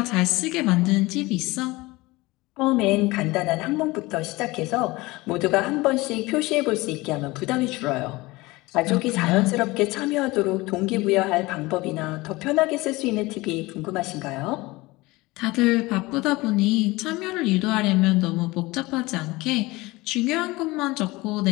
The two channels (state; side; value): quieter; right; 21.4 dB